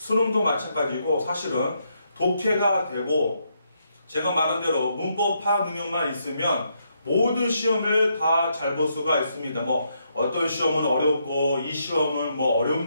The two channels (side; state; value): both; inverted; correlation -0.77